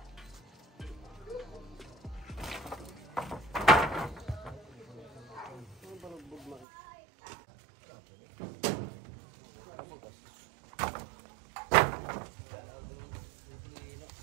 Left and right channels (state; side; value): drops out; left; at 6.7 s